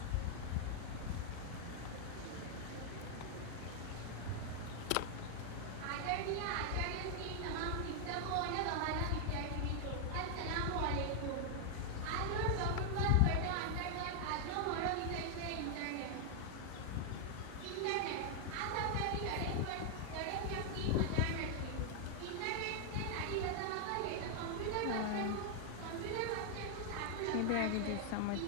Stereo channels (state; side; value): different; both; correlation 0.00